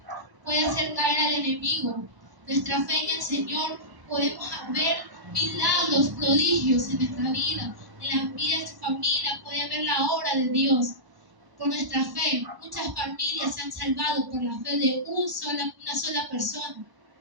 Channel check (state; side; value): late; left; 1.0 ms